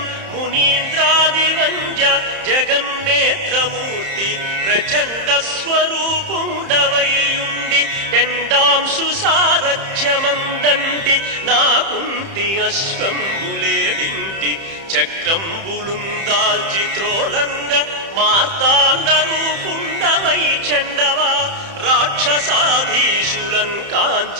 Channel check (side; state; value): left; late; 30 ms